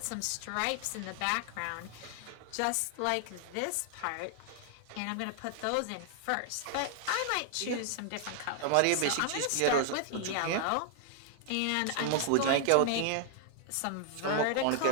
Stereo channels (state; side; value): different; both; correlation 0.00